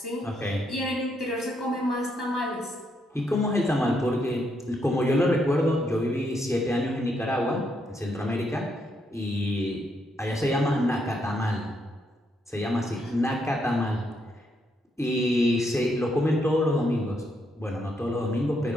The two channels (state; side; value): normal; both; correlation 0.77